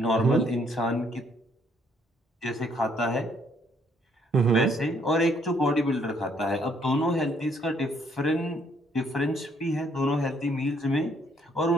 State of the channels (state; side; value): normal; both; correlation 0.67